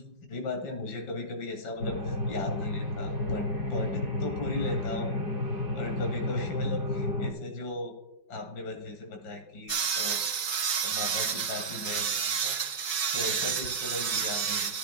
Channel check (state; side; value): late; right; 5.3 ms